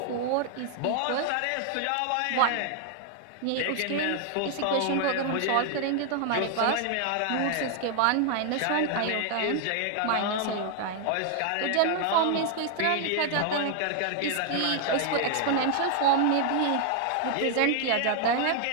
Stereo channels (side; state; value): both; different; correlation 0.00